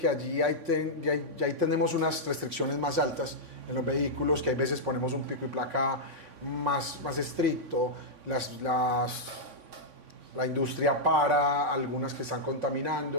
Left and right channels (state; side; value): late; left; 3.5 ms